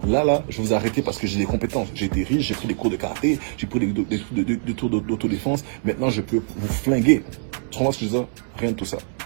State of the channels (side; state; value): left; silent; 63 dB below the other